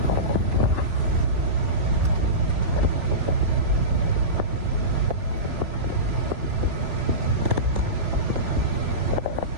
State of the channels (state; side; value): late; left; 3.5 ms